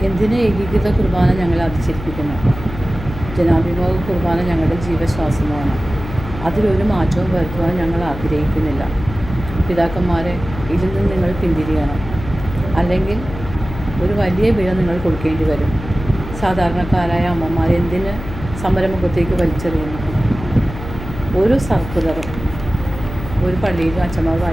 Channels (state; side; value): noise; left; hum, 10 dB below the sound